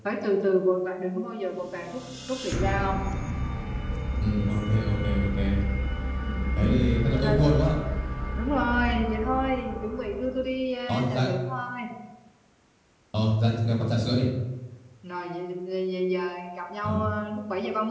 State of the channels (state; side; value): identical; both; correlation 1.00